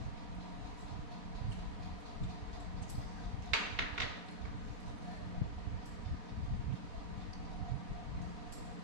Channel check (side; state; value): left; late; 4.1 ms